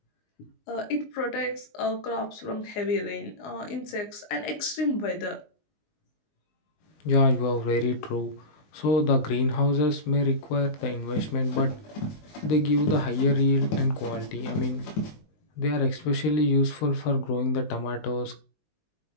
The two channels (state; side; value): late; right; 19 ms